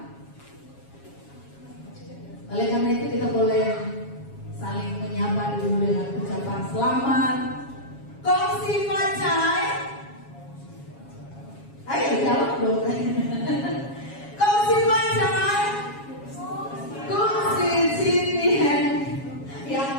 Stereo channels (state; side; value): late; right; 7.3 ms